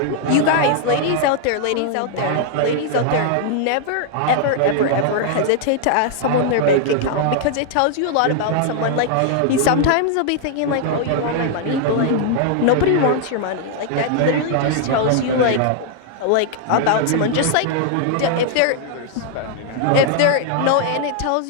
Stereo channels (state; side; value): different; both; correlation 0.00